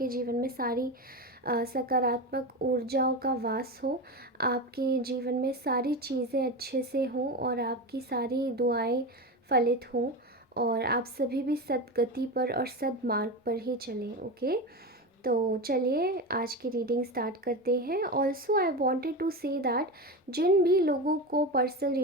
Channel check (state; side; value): normal; both; correlation 0.21